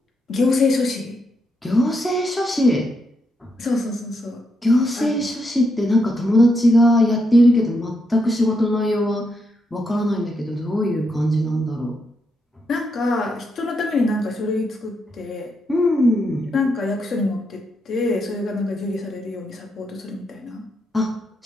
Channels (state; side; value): normal; both; correlation 0.81